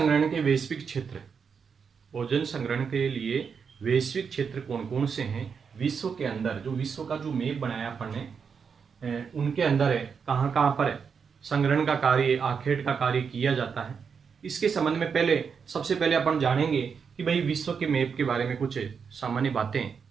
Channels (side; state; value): left; quieter; 6.2 dB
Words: के वैश्विक क्षेत्र। भोजन संग्रहण के लिए वैश्विक क्षेत्र कौन कौन से हैं विश्व के अंदर, जो विश्व का जो मैप बनाया अपन ने उनके अंदर है, कहाँ कहाँ पर है संग्रहण का कार्य, आखेट का कार्य किया जाता है। इसके संबंध में सबसे पहले अपन जानेंगे कि भाई विश्व के मैप के बारे में कुछ सामान्य